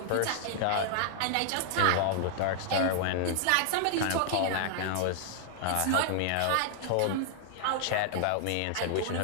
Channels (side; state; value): both; different; correlation -0.01